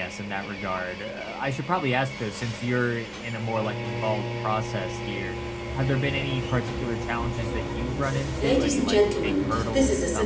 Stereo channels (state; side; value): identical; both; correlation 1.00